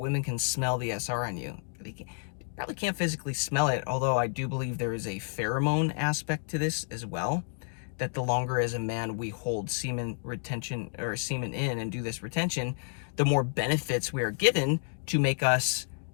can smell the SR on you. They probably can't physically smell it, although I do believe there is a pheromone aspect to this as well, that the longer as a man we hold semen retention or semen in and do this retention, the more benefits we are given to make us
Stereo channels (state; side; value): silent; right; 58 dB below the other